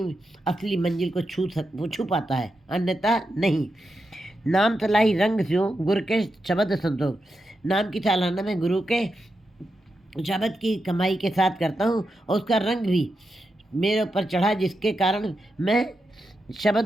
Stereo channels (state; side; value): normal; both; correlation 0.87